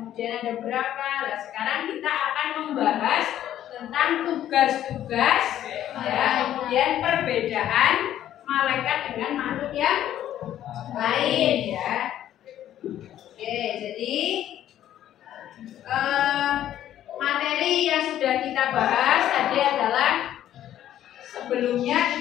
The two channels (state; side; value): quieter; right; 11.8 dB